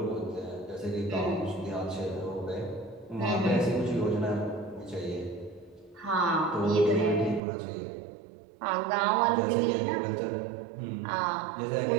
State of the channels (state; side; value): drops out; left; at 7.4 s